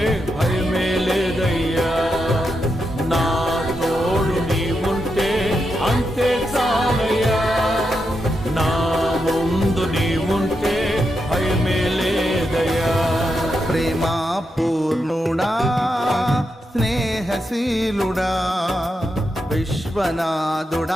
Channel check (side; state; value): both; normal; correlation 0.85